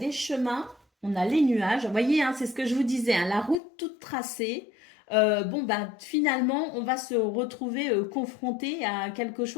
chemins, on a les nuages. Vous voyez, hein, c'est ce que je vous disais, hein, la route toute tracée. Bon, bah, finalement, on va se retrouver confronté à quelque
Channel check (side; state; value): right; drops out; at 3.6 s